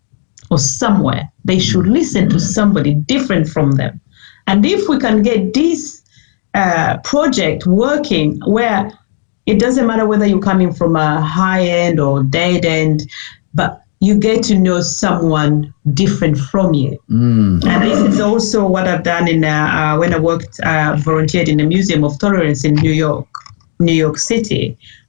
or somewhere. They should listen to somebody different from them. And if we can get this project working where it doesn't matter whether you're coming from a high end or dead end, but you get to know someone different from you. And this is also what I've done in when I volunteered in the Museum of Tolerance in New York City.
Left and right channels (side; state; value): right; silent; digital silence